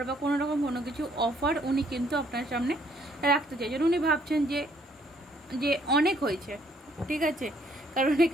বা কোনো রকম কোনো কিছু অফার উনি কিন্তু আপনার সামনে রাখতে চাইছেন। উনি ভাবছেন যে অনেক হয়েছে, ঠিক আছে, কারণ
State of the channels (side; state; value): both; normal; correlation 0.66